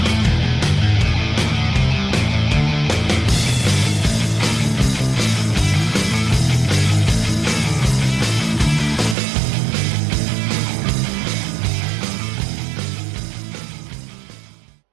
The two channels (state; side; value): drops out; left; at 9.2 s